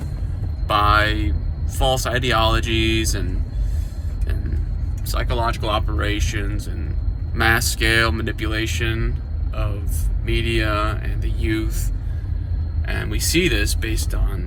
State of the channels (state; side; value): identical; both; correlation 1.00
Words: by false ideologies and psychological operations and mass scale manipulation of media and the youth. And we see this based